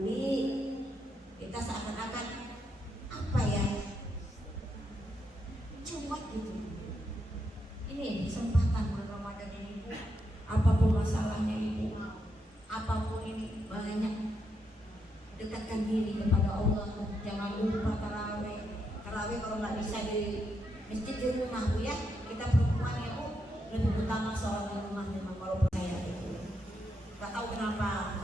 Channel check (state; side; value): normal; both; correlation 0.81